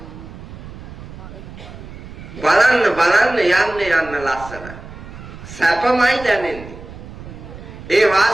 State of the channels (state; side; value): noise; right; rumble, 14 dB below the sound